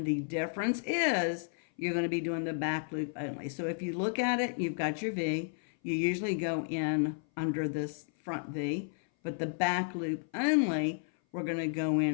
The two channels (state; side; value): silent; right; 56 dB below the other